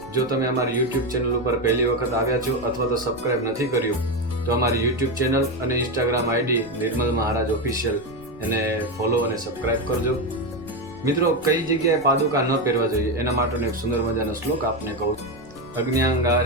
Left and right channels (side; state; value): left; noise; rumble, 21 dB below the sound